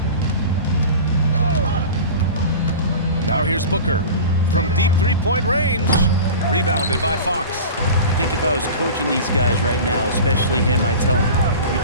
Now here's Booker. From deep 3-point range. Rebounded by Fox. I think if I was coaching these guys right now, especially him, I'd tell him, you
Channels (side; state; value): both; inverted; correlation -0.34